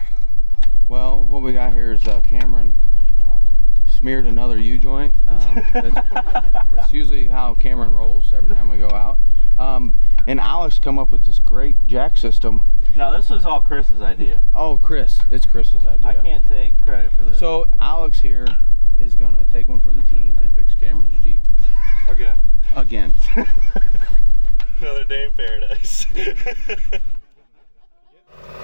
Well, what we got here is Cameron smeared another U-joint. That's usually how Cameron rolls every time we go out. And Alex come up with this great jack system. No, this was all Chris's idea. Oh, Chris. It's Chris's idea. I can't take credit for this. So Alex here is going to take one for the team and fix Cameron's Jeep. Again. Another day in paradise.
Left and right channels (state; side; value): inverted; both; correlation -1.00